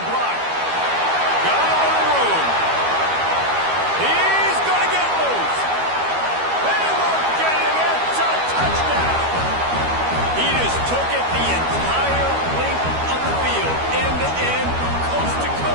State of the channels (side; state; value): left; late; 12 ms